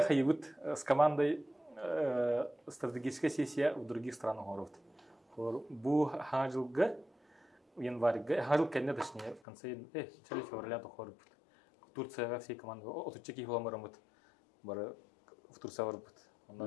хайбут с командой стратегическая сессия в других странах город. Бу хажылга январьга, хажыл кенне точнее в конце начале февраля то хорбут. Турция всей команды отучеки фламарамут. Бар в Турция варбут.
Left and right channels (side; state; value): right; drops out; at 9.4 s